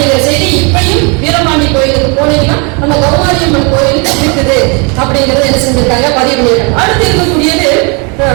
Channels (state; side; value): quieter; left; 33.0 dB